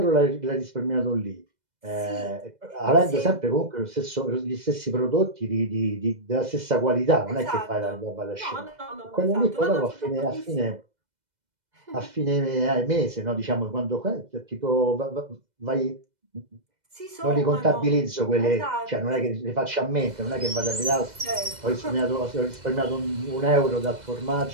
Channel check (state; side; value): late; left; 2.0 ms